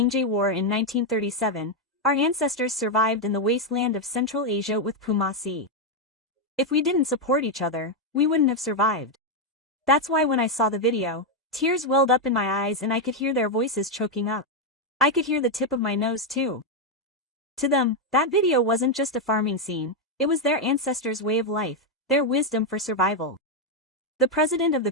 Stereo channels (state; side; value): normal; both; correlation 0.02